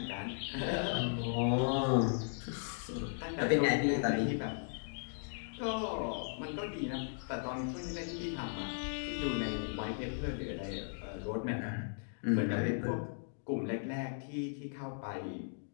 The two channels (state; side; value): silent; right; digital silence